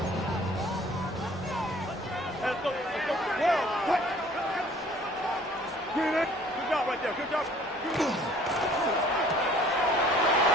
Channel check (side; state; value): both; normal; correlation 0.53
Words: Good job right there. Good job.